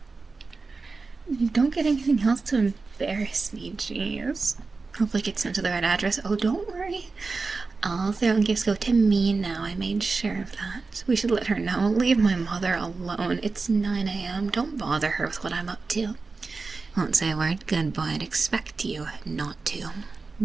You don't get anything else to embarrass me, jeez. Hopefully it gets sent to the right address. Oh, don't worry. All Throne gifts go to me now. I made sure of that. We should let her know. Leave my mother alone. It's 9 a.m. Don't bother her with what I'm up to. Won't say a word. Good boy. I'd expect you not to.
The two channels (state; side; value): quieter; left; 4.1 dB